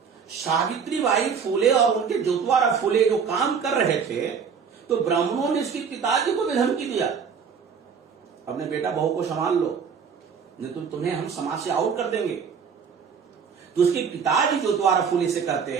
सावित्री बाई फुले और उनके जोतवारा फुले जो काम कर रहे थे, तो ब्राह्मणों ने इसके पिताजी को भी धमकी दिया अपने बेटा बहू को संभाल लो, नहीं तो तुम्हें हम समाज से आउट कर देंगे। तो उसके पिताजी जो द्वारा फूले से कहते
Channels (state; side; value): quieter; left; 6.4 dB